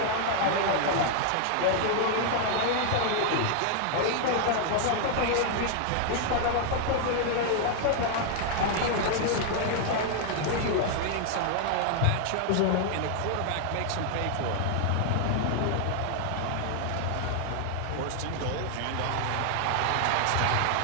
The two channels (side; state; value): both; different; correlation 0.00